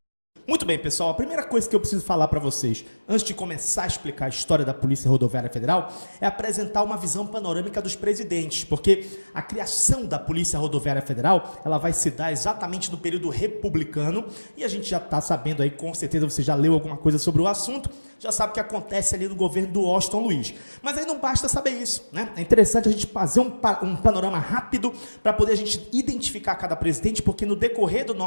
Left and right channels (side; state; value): both; inverted; correlation -1.00